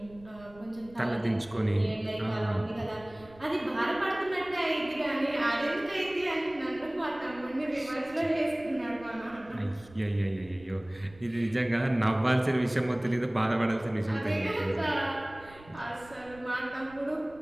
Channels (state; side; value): noise; right; rumble, 22 dB below the sound